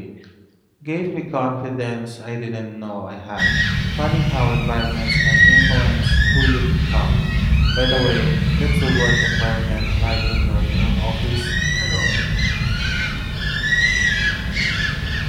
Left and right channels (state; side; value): identical; both; correlation 1.00